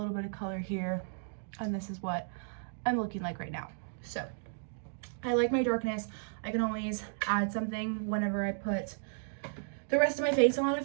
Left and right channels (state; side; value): silent; left; digital silence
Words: bit of color here, and this is what I'm looking like right now. So I like my darkness. I can always add something whenever I put the rest of my face on.